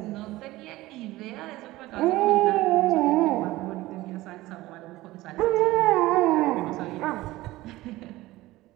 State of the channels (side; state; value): left; quieter; 18.0 dB